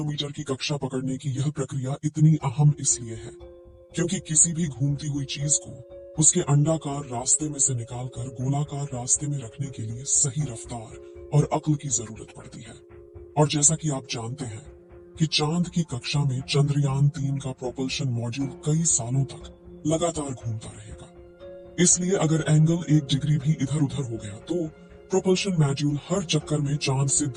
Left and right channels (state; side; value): identical; both; correlation 1.00